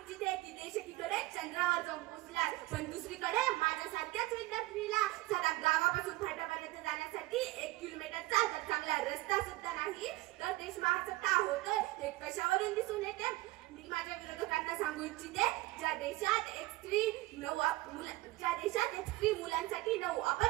की देश एकीकडे चंद्रावर जाऊन पोहोचला, पण दुसरीकडे माझ्यासारख्याच विद्यार्थ्यांना साधा गावापासून फाट्यापर्यंत जाण्यासाठी 1 किलोमीटरचा जर चांगला रस्ता सुद्धा नाही तर देश महासत्ता होतोय हे कशावरून दिसून येते? मी माझ्या विरोधकांना सांगू इच्छिते, ज्या देशात एक स्त्री मुलांसाठी 9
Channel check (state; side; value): quieter; left; 19.3 dB